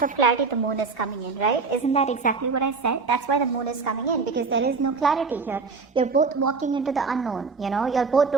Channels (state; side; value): quieter; left; 4.6 dB